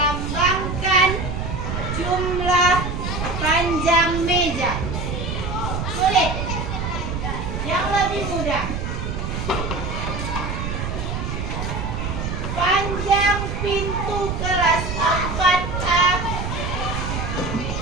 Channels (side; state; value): right; noise; rumble, 3 dB below the sound